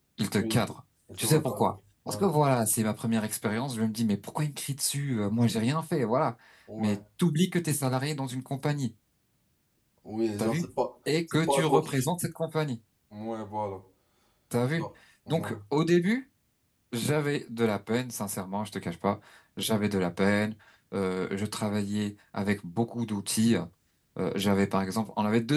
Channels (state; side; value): identical; both; correlation 1.00